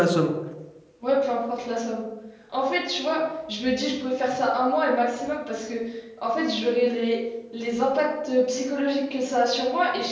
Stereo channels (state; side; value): identical; both; correlation 1.00